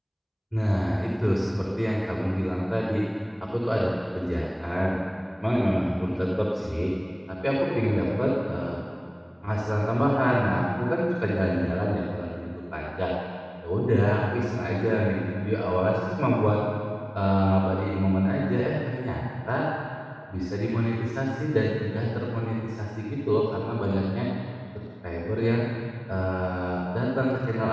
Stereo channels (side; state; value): both; identical; correlation 1.00